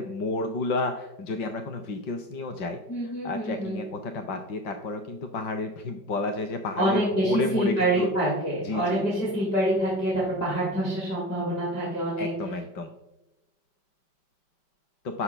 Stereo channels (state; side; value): late; right; 5.1 ms